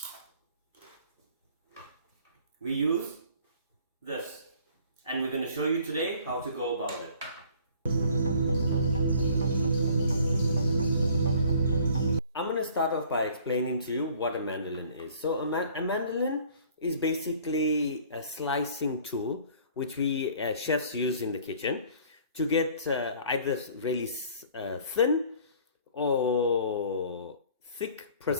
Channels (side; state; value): both; inverted; correlation -0.52